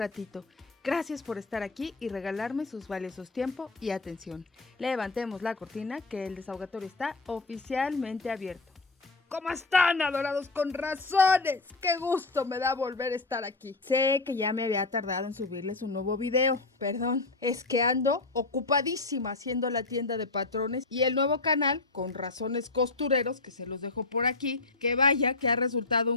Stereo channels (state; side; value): quieter; right; 3.5 dB